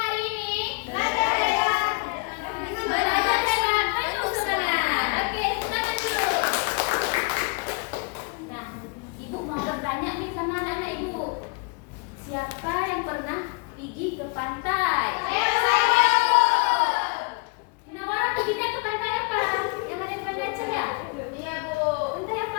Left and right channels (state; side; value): quieter; right; 31.1 dB